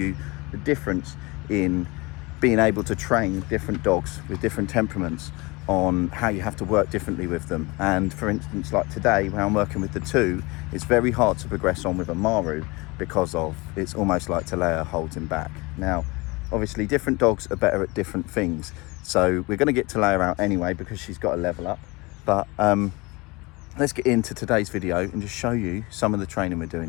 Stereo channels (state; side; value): quieter; right; 24.8 dB